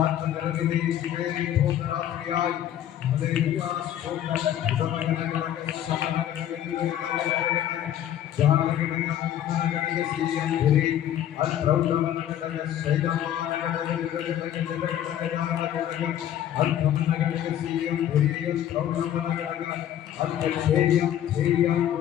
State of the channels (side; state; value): right; quieter; 11.1 dB